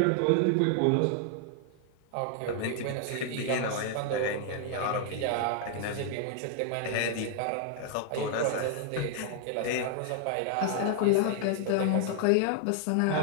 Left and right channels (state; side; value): different; both; correlation 0.00